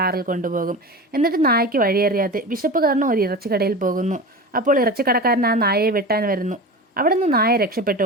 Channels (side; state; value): both; normal; correlation 0.30